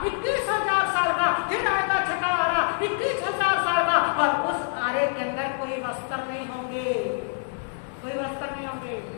21,000 साल का, फिर आएगा छठा आरा 21,000 साल का, और उस आरे के अंदर कोई वस्त्र नहीं होंगे, कोई वस्त्र नहीं होंगे।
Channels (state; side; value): silent; right; digital silence